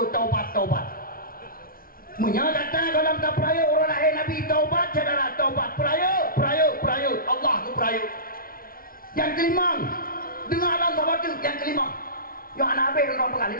menyatakan dalam tak peraya orang lahir Nabi taubat adalah taubat peraya Allah ke peraya yang kelima dengar dalam taubat yang kelima yang anak habis orang pegang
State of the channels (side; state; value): right; late; 0.42 ms